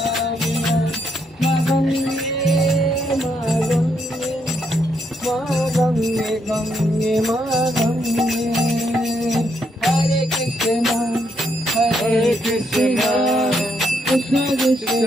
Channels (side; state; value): both; normal; correlation 0.76